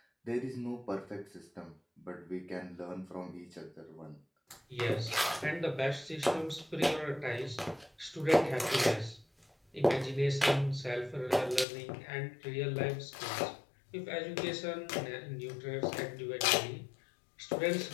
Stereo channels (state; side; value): drops out; right; at 11.7 s